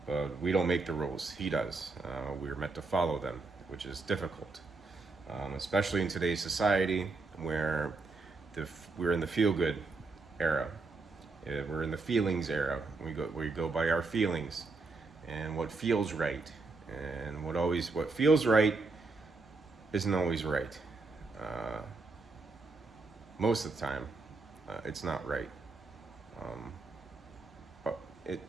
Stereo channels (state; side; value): quieter; left; 3.8 dB